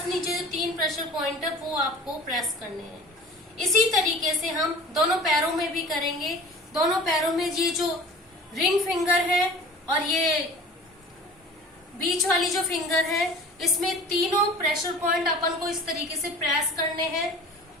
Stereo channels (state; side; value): normal; both; correlation 0.42